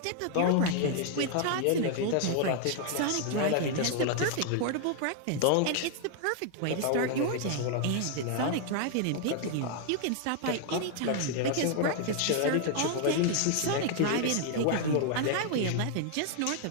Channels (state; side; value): different; both; correlation 0.00